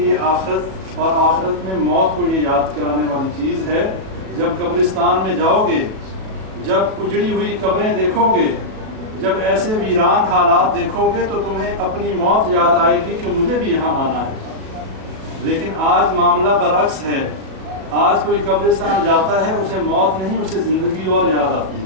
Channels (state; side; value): late; left; 37 ms